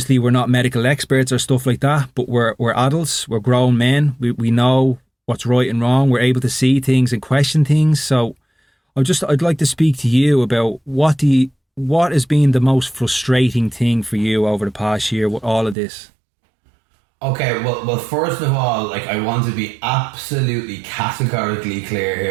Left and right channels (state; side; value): drops out; left; at 15.8 s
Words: we're not medical experts or stuff like that, but we're adults, we're grown men, we know what's right and wrong, we're able to see things and question things. So I'd like to speak to you about what has been the most frustrating thing for you over the past year with all of this. Okay, well, first of all, like, I want to be absolutely categorically clear